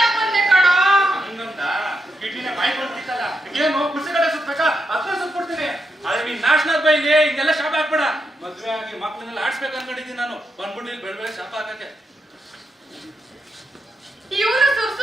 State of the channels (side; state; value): both; normal; correlation 0.83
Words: ಬಂದೆ ಕಣೋ. ಹಂಗಂತ ಕಿಡ್ನಿನ ಬಾಯಿ ಕೊಡ್ತಿತ್ತಲ್ಲ, ಏನು ಕುರ್ಸಿಗಡೆ ಸುತ್ಬೇಕಾ? ಅದನ್ನ ಸುತ್ಕೊಡ್ತೀನಿ. ಆದ್ರೆ ನೀನ್ ನ್ಯಾಷನಲ್ ಬೈಲಿ ಹಿಂಗೆಲ್ಲ ಶಾಪ ಹಾಕ್ಬೇಡ. ಮದ್ವೆ ಆಗಿ ಮಕ್ಳನ್ನೆಲ್ಲ ಆಡ್ಸ್ಬೇಕು ಅನ್ಕೊಂಡಿದ್ದೀನಿ ನಾನು. ಬಂದ್ಬಿಟ್ಟು ಇಲ್ಲಿ ಬೆಳ್ ಬೆಳೆ ಶಾಪ ಹಾಕಕ್ಕೆ. ಇವನು